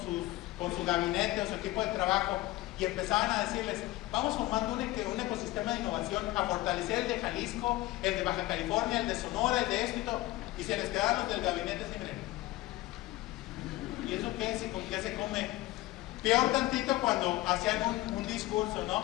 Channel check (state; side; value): quieter; right; 17.9 dB